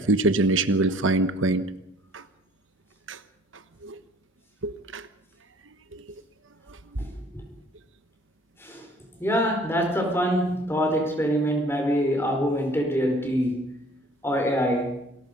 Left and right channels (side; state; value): both; normal; correlation 0.55